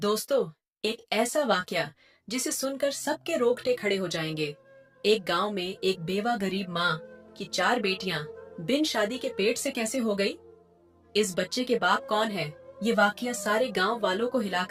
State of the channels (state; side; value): identical; both; correlation 1.00